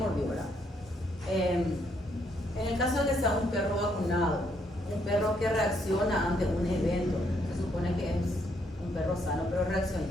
¿verdad? En el caso de que sea un perro vacunado, un perro que reacciona ante un evento, se supone que es un perro sano, pero reacciona.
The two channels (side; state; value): both; normal; correlation 0.73